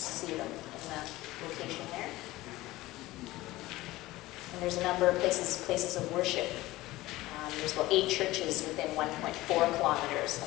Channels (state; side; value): quieter; right; 18.1 dB